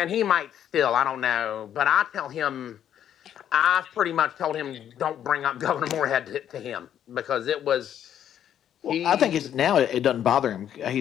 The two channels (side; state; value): right; quieter; 10.1 dB